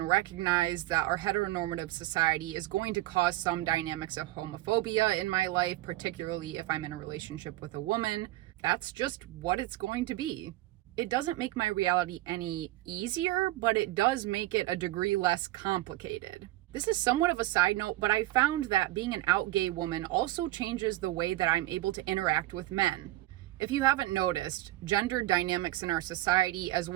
recognize that our heteronormative society is going to cause some dynamics of homophobia in my life, particularly if I'm in a relationship with a woman, that's just what it's going to be. It doesn't make my reality any easier, but it does make it a degree less complicated. This is somewhat of a side note, but I found that being an out gay woman also changes the way that I'm able to interact with men. If you haven't noticed, gender dynamics in our society, as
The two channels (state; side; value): quieter; left; 17.0 dB